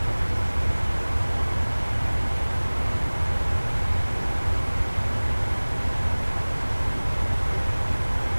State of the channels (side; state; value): both; inverted; correlation -1.00